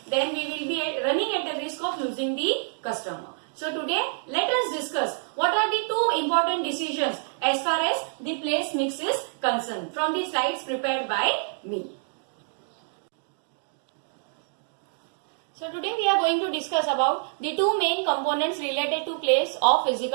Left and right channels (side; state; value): left; silent; 60 dB below the other